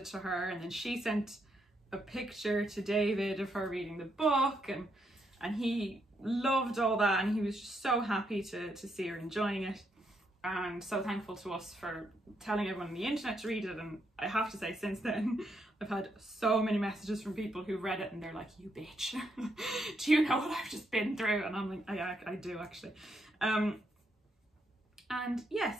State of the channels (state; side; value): normal; both; correlation 0.78